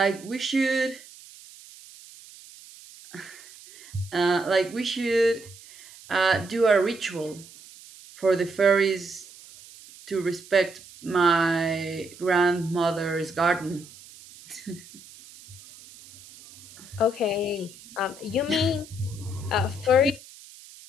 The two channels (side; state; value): right; noise; hiss, 20 dB below the sound